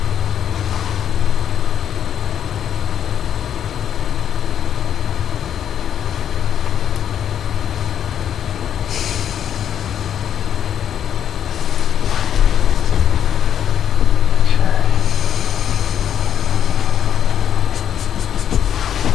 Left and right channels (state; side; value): quieter; right; 9.4 dB